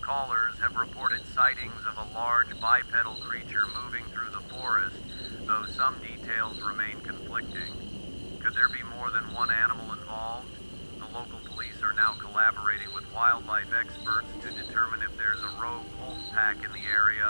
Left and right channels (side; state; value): both; inverted; correlation -1.00